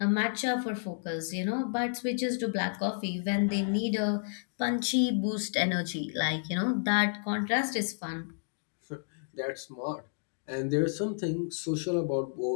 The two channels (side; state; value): right; silent; digital silence